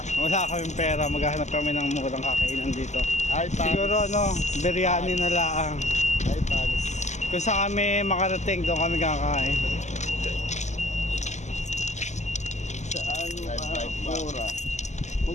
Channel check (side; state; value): right; late; 0.33 ms